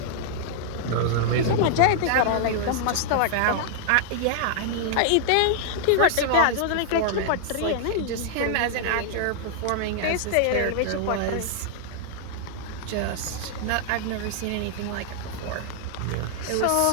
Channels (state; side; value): different; both; correlation -0.01